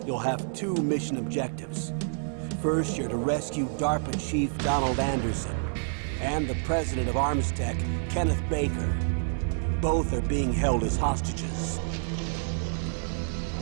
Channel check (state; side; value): silent; left; 59 dB below the other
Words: You'll have two mission objectives. First, you're to rescue DARPA Chief Donald Anderson and the president of Armstech, Kenneth Baker. Both are being held as hostages.